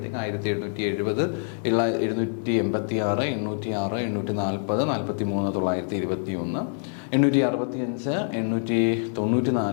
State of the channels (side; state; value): right; silent; digital silence